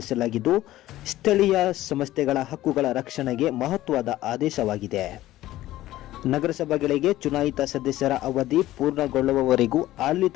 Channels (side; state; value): right; quieter; 15.4 dB